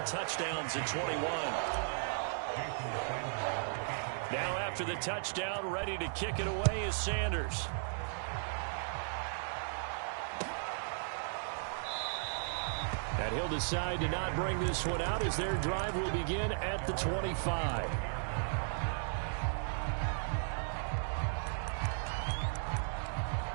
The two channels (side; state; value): left; silent; digital silence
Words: touchdowns in 21. Now after the touchdown, ready to kick it away is Sanders. And he'll decide to not bring this one out as their drive will begin at the 25.